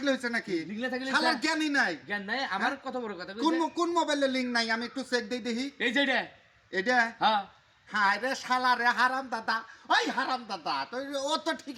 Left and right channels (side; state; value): both; identical; correlation 1.00